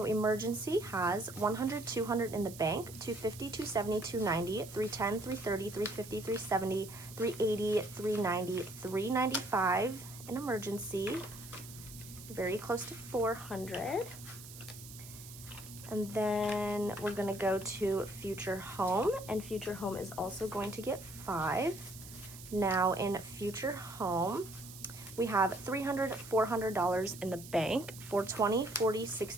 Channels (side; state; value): right; noise; hiss, 15 dB below the sound